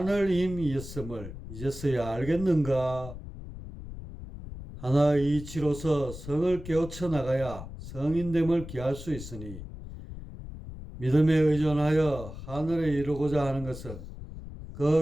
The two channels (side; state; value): left; noise; rumble, 12 dB below the sound